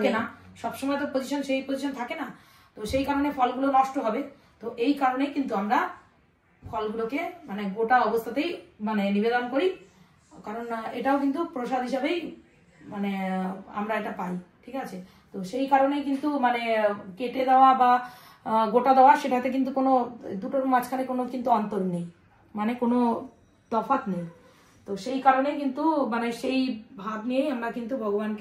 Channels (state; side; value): identical; both; correlation 1.00